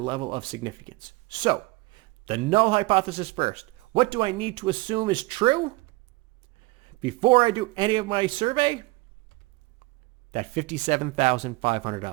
of significance. So, the null hypothesis first. What do I need to assume is true before I do any of my survey? That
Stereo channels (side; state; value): left; quieter; 22.5 dB